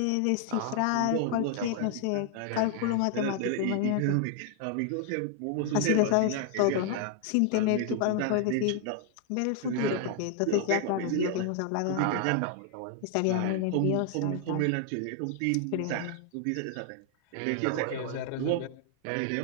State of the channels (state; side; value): different; both; correlation 0.00